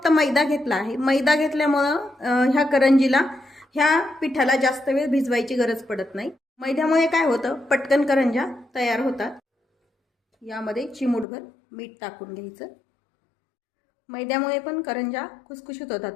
मैदा घेतला आहे. मैदा घेतल्यामुळं ह्या करंजीला ह्या पिठाला जास्त वेळ भिजवायची गरज पडत नाही. मैद्यामुळे काय होतं, पटकन करंज्या तयार होतात. यामध्ये चिमूटभर मीठ टाकून घ्यायचं. मैद्यामुळे पण करंज्या खुसखुशीत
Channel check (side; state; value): right; drops out; at 11.2 s